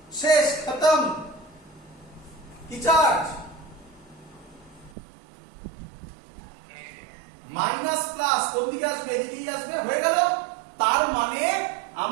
শেষ, খতম। কি চার্জ? মাইনাস প্লাস কোন দিকে আসবে? এদিকেই আসবে, হয়ে গেল। তার মানে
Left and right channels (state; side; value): drops out; left; at 4.9 s